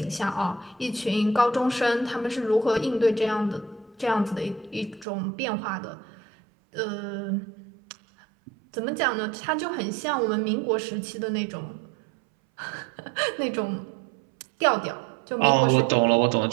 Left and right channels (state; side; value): drops out; left; at 5.1 s